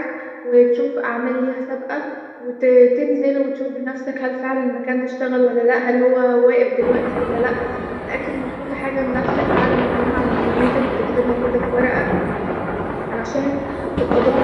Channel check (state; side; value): identical; both; correlation 1.00